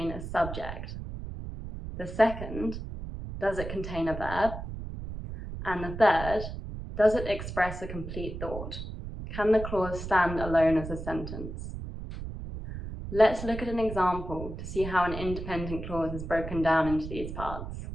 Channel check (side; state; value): right; noise; rumble, 8 dB below the sound